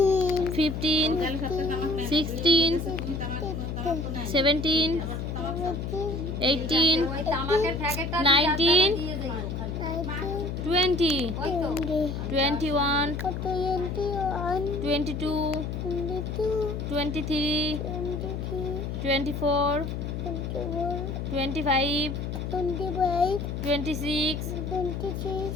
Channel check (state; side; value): noise; left; hum, 4 dB below the sound